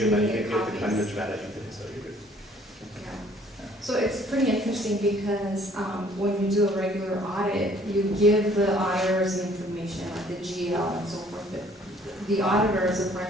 many the copies. kind of strategy today, so you're good. Yeah. So it's pretty interesting because when you do a regular audit, you give the auditors the information, like the GL and so forth, but the auditors, the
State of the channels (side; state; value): both; normal; correlation 0.58